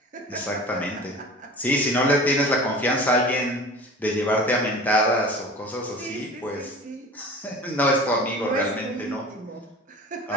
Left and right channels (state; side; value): normal; both; correlation 0.39